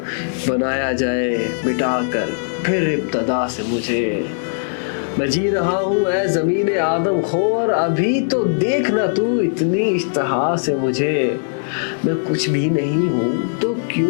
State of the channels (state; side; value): silent; right; digital silence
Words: بنایا جائے مٹا کر پھر ابتدا سے مجھے، میں جی رہا ہوں اے زمین آدم خور ابھی تو دیکھنا تو اتنی اشتہا سے مجھے، میں کچھ بھی نہیں ہوں تو